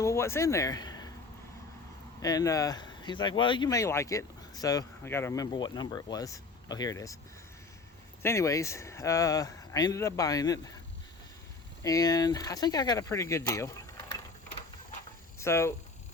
"Well, what's in there?" And he's like, "Well, you may like it." So I got to remember what number it was. Oh, here it is. So anyways, I ended up buying it, and I think I got a pretty good deal. So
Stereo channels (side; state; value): right; quieter; 3.9 dB